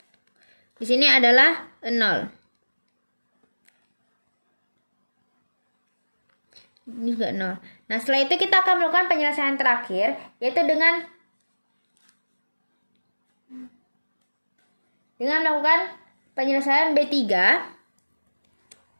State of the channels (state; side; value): inverted; both; correlation -1.00